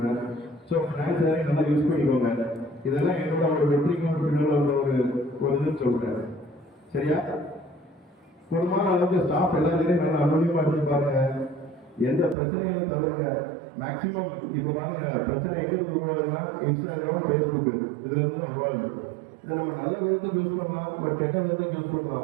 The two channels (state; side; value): drops out; left; at 12.4 s